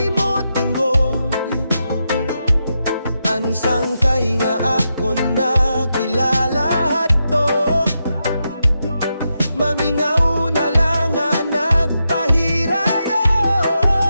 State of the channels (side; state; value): both; inverted; correlation -0.86